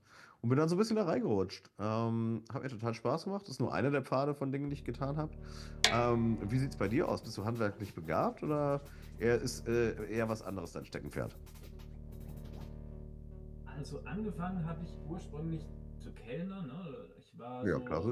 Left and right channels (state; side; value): identical; both; correlation 1.00